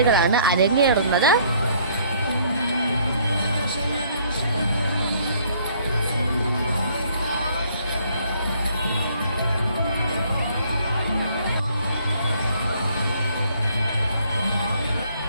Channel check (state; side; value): inverted; both; correlation -0.63